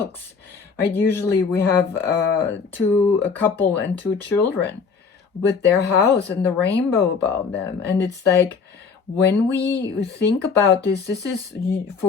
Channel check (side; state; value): right; quieter; 5.4 dB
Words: right? Usually we have a couple and 2 children with their house and the rainbow above them, and it's like, when we think about this is